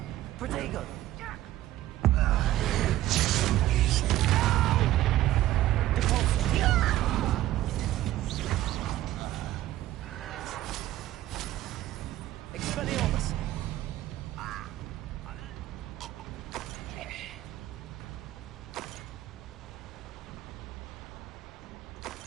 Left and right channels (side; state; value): left; quieter; 14.7 dB